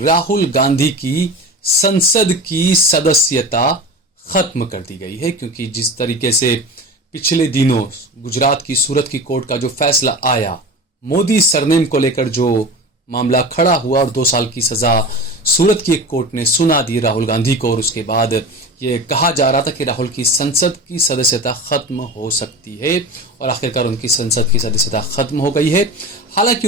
राहुल गांधी की संसद की सदस्यता खत्म कर दी गई है, क्योंकि जिस तरीके से पिछले दिनों गुजरात की सूरत की कोर्ट का जो फैसला आया, मोदी सरनेम को लेकर जो मामला खड़ा हुआ और 2 साल की सजा सूरत की एक कोर्ट ने सुना दी राहुल गांधी को, और उसके बाद ये कहा जा रहा था कि राहुल की संसद की सदस्यता खत्म हो सकती है, और आखिरकार उनकी संसद की सदस्यता खत्म हो गई है। हालांकि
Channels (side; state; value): both; normal; correlation 0.31